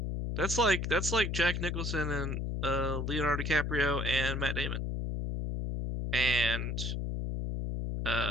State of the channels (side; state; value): left; noise; hum, 2 dB below the sound